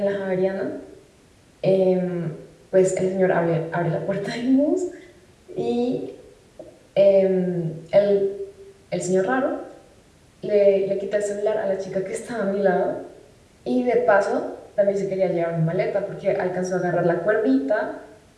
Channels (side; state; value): both; identical; correlation 1.00